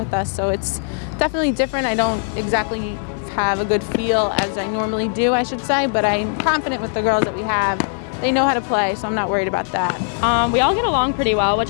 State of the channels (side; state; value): right; silent; digital silence